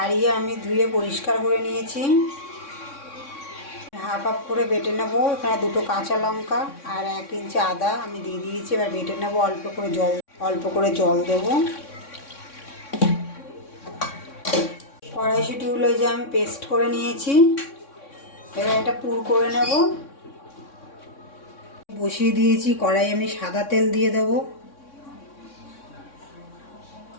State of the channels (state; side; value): late; right; 3.6 ms